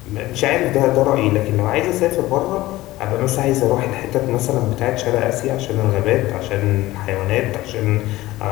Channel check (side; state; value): right; quieter; 17.5 dB